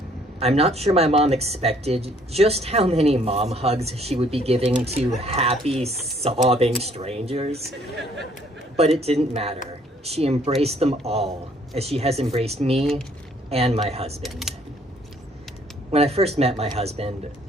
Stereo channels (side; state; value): both; normal; correlation 0.62